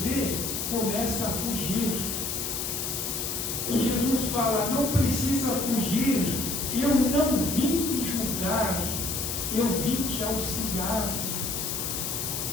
vê, começa a fugir. E Jesus fala: não precisa fugir, eu não vim te julgar, eu vim te auxiliar.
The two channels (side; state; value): left; noise; hiss, 2 dB below the sound